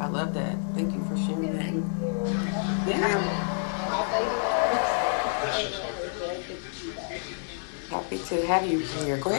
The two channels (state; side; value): silent; right; 59 dB below the other